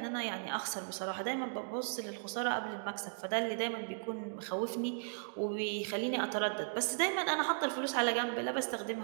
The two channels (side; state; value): left; silent; digital silence